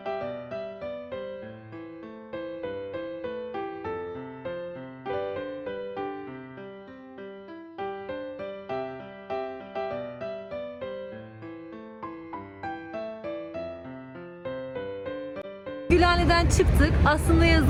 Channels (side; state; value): both; identical; correlation 1.00